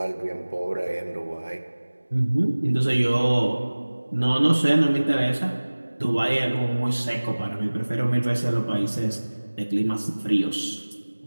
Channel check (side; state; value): both; inverted; correlation -1.00